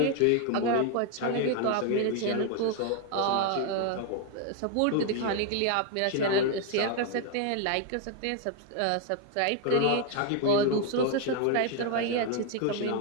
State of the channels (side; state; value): both; different; correlation 0.00